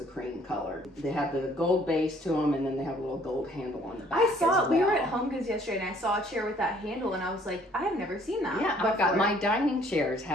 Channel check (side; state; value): both; normal; correlation 0.59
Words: cream color. They have the gold base to them, and then they have a little gold handle on the back. I saw, we were at Home Goods yesterday, and I saw a chair with that handle, and I was like, I have never seen that. Yeah, I've got my dining chairs